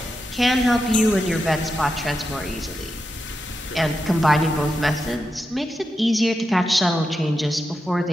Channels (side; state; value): both; normal; correlation 0.88